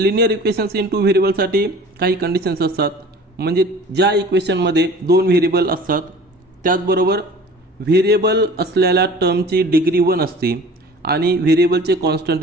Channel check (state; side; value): normal; both; correlation 0.44